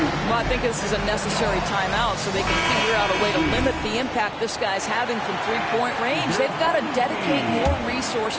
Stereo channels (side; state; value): both; identical; correlation 1.00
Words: Well, I think this is a necessary timeout so they can figure out a way to limit the impact this guy's having from three-point range. They've got to dedicate more